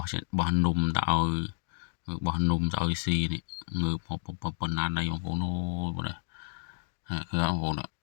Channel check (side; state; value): right; silent; digital silence